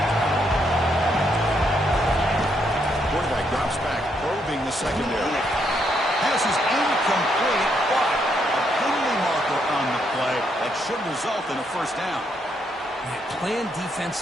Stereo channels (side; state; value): both; normal; correlation 0.76